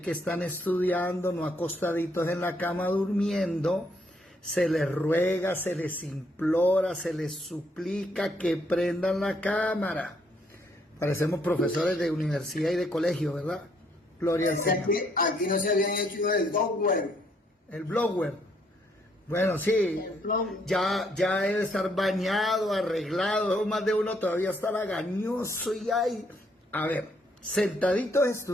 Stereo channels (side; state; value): both; normal; correlation 0.71